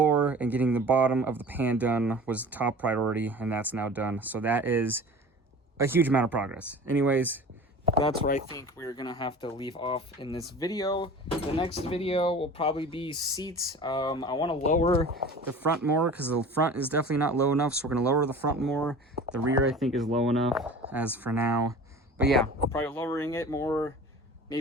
and getting the bottom of the pan done was top priority, and that's now done. So that is a huge amount of progress. Anyways, that's where I think we're gonna have to leave off in this video. The next video will probably be seats. I want to lower the front more because the front is definitely not low enough, so we're gonna lower the front more. The rear I think is low enough as for now. But yeah, probably lowering it more,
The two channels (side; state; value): both; normal; correlation 0.40